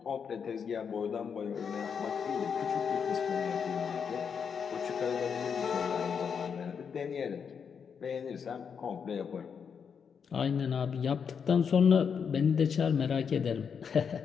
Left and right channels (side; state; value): right; quieter; 6.7 dB